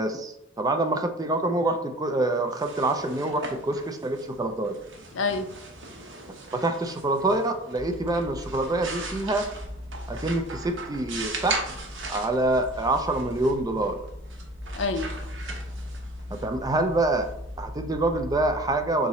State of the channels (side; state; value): both; normal; correlation 0.44